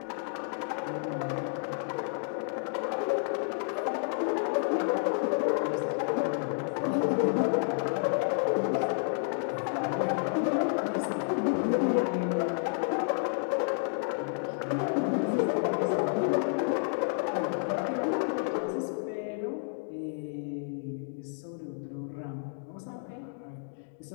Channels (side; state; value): right; silent; digital silence